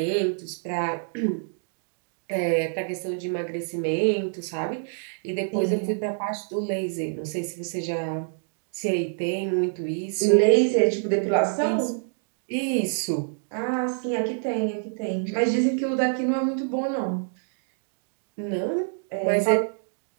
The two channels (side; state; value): left; silent; 61 dB below the other